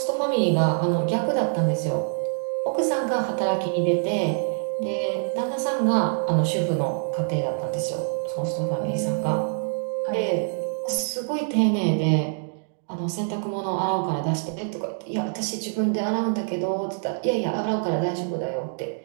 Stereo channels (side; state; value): left; silent; digital silence